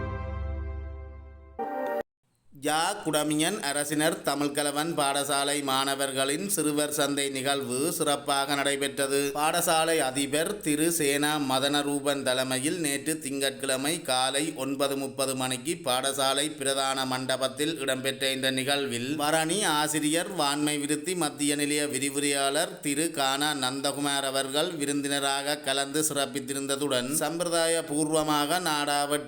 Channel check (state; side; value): identical; both; correlation 1.00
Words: குடமியன் அரசினர் தமிழ்கலவன் பாடசாலை மாணவர்களின் சிறுவர் சந்தை நிகழ்வு சிறப்பாக நடைபெற்றது. பாடசாலை அதிபர் திரு சேனா மதனரூபன் தலைமையில் நேற்று திங்கட்கிழமை காலை 9:30 மணிக்கு பாடசாலை பிரதான மண்டபத்தில் இடம்பெற்ற இந்த நிகழ்வில் வரணி ஆசிரியர் வான்மை விருத்தி மத்திய நிலைய விரிவுரையாளர் திரு கானா நந்தகுமார் அவர்கள் விருந்தினராக கலந்து சிறப்பித்திருந்ததுடன் சம்பிரதாய பூர்வமாக